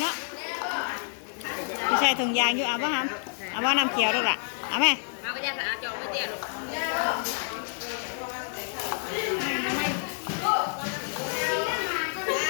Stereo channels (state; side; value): silent; right; 59 dB below the other